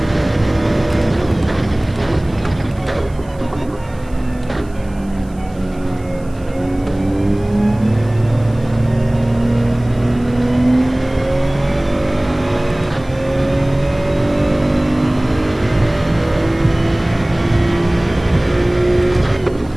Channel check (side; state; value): right; noise; hiss, 28 dB below the sound